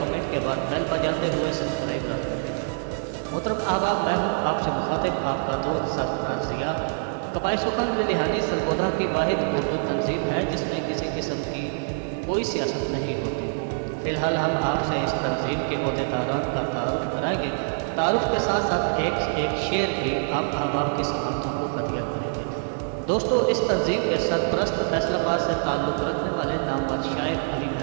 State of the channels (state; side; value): silent; left; digital silence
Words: के बाद बेल बजाते हुए सब्सक्राइब कर दें। मतलब मैं हूँ आपसे मुखातिब आपका दोस्त सरफराज ज़िया। कबाई सुखन लिलिहानी सरगोधा की वाहिद उर्दू तंजीम है जिसमें किसी किस्म की कोई सियासत नहीं होती। फ़िलहाल हम आपसे इस तंजीम के अहदेदारान का तारुफ कराएंगे। तारुफ के साथ साथ एक शेर भी आप अहबाब की समातों को हदिया करेंगे। दोस्तों, इस तंजीम के सरपरस्त फैसलाबाद से ताल्लुक़ रखने वाले नामवर शायर अली